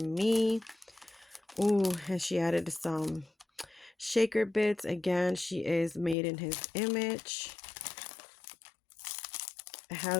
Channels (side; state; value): right; drops out; at 6.2 s